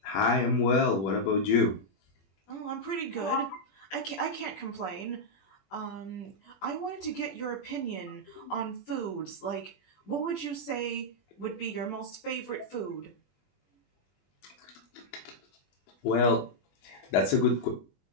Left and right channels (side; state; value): right; late; 21 ms